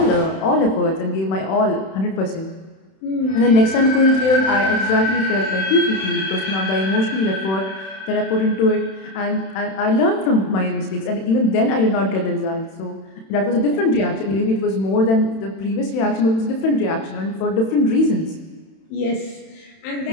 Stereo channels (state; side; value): late; right; 31 ms